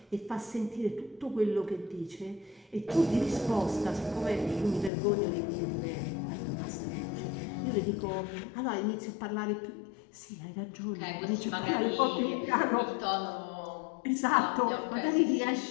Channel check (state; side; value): drops out; right; at 4.9 s